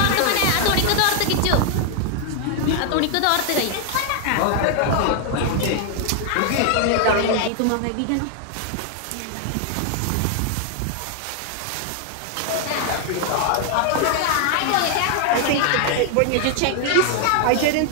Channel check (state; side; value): different; both; correlation 0.00